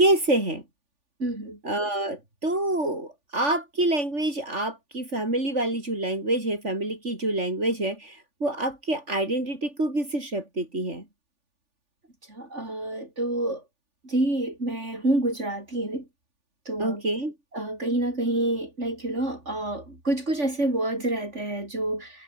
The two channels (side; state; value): left; late; 3.4 ms